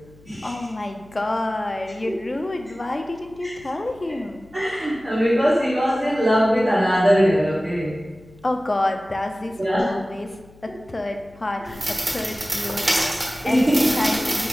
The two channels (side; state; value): left; noise; hum, 25 dB below the sound